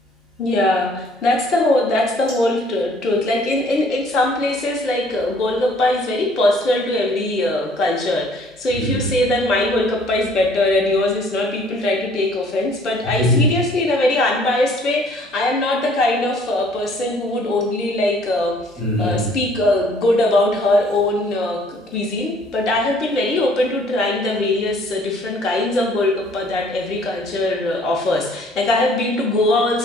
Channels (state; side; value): normal; both; correlation 0.58